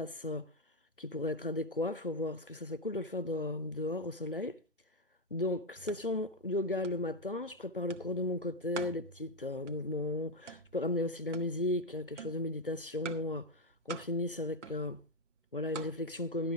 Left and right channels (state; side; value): normal; both; correlation 0.05